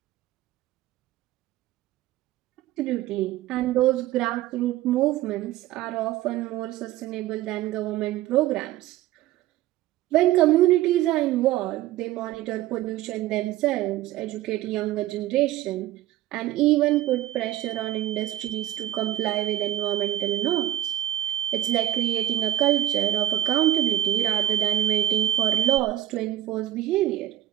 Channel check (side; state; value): left; quieter; 13.7 dB